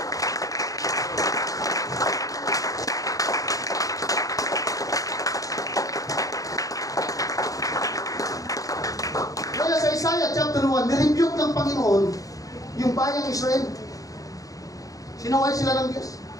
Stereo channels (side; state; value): right; late; 0.17 ms